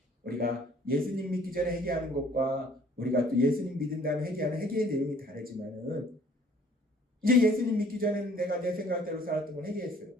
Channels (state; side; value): normal; both; correlation 0.57